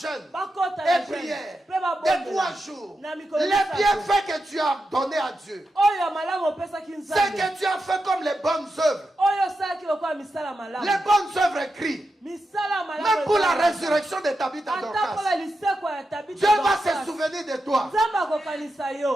et prière de 3 jours. Les bienfaits que tu as donnés à Dieu, c'est que tu as fait comme les bonnes œuvres. Les bonnes œuvres écrites. Même pour la résurrection de Tabitha Dorcas, Dieu va se souvenir de toi.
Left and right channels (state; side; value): normal; both; correlation 0.88